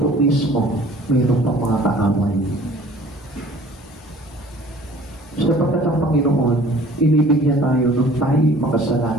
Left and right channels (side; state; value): both; normal; correlation 0.50